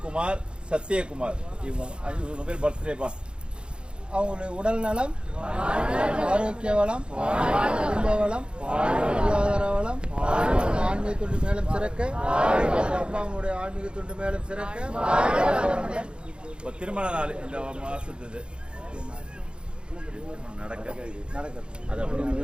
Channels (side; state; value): left; late; 0.053 ms